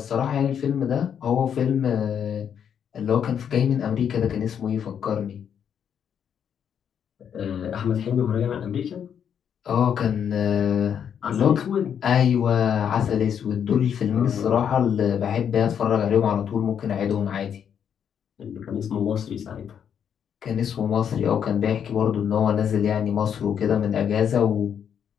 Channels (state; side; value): quieter; right; 8.3 dB